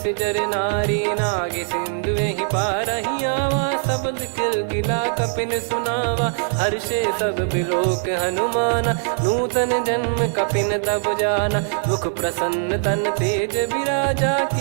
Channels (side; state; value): left; silent; digital silence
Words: नारी। नागे सिंधु ही पारहि आवा, शब्द किलकिला कपिन सुनावा। हर्षे सब बिलोक हनुमाना, नूतन जन्म कपिन तब जाना। मुख प्रसन्न तन तेज विराजा,